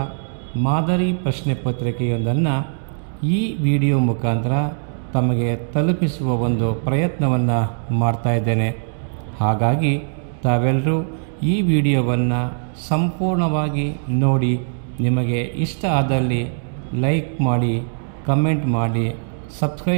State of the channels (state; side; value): silent; left; digital silence